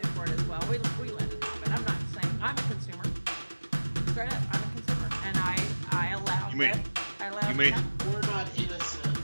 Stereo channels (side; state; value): both; inverted; correlation -1.00